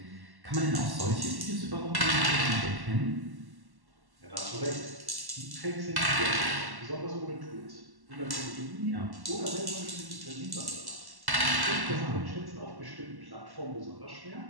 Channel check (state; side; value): late; left; 1.1 ms